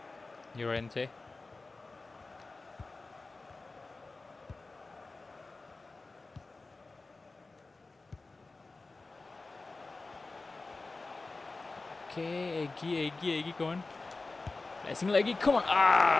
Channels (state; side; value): quieter; right; 3.5 dB